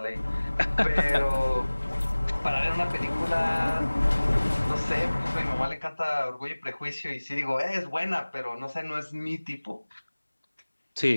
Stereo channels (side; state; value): both; inverted; correlation -1.00